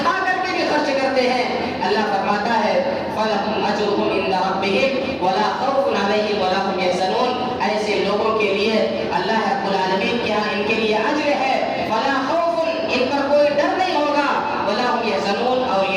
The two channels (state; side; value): identical; both; correlation 1.00